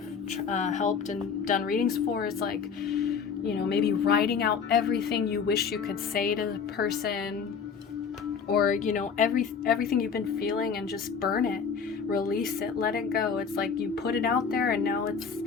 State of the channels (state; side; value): quieter; right; 6.2 dB